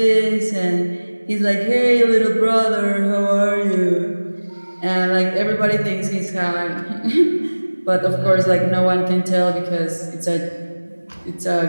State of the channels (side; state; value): both; inverted; correlation -1.00